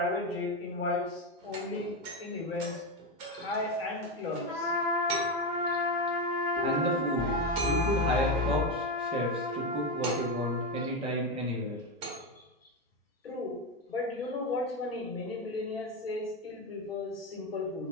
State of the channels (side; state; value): both; normal; correlation 0.12